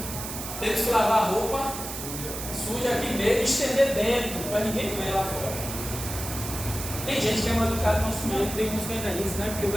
temos que lavar a roupa suja aqui mesmo, estender dentro, para ninguém ver lá fora. Tem gente que é mal educada no nosso meio. Tem uns que ainda dizem, né? Porque o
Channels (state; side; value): noise; right; hiss, 7 dB below the sound